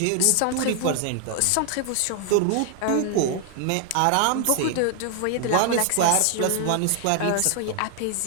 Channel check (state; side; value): different; both; correlation 0.00